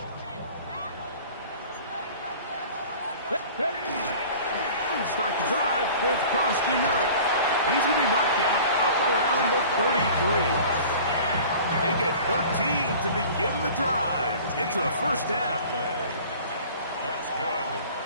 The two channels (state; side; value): inverted; both; correlation -0.44